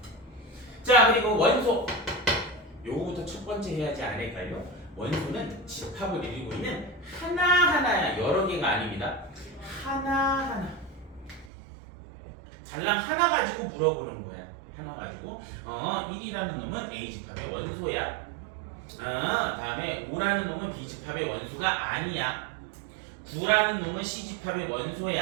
자, 그리고 원소 요거부터 첫 번째 해야지 않을까요? 원소는 집합을 이루고 있는 하나하나야. 여러 개가 아닙니다. 하나하나. 달랑 하나 가지고 물어보는 거야. 하나 가지고 1이라는 놈은 A집합의 원소야. 다음에 5라는 놈은 B집합의 원소가 아니야. 9라는 놈은 C집합의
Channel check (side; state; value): left; drops out; at 11.5 s